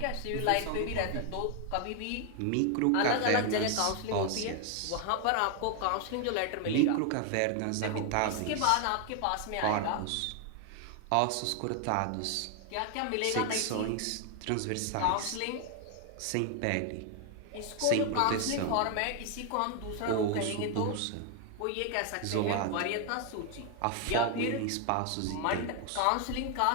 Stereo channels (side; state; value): both; different; correlation 0.00